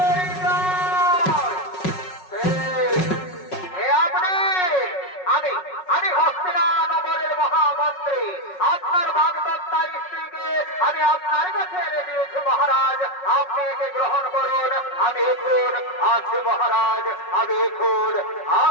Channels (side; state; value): right; late; 5.4 ms